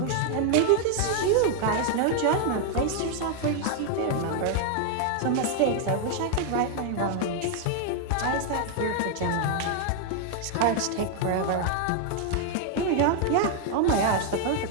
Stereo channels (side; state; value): both; different; correlation 0.00